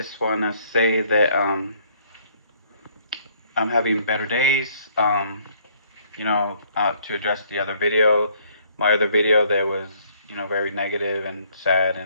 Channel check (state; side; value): inverted; both; correlation -0.63